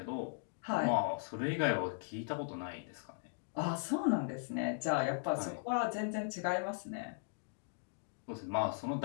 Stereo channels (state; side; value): silent; right; digital silence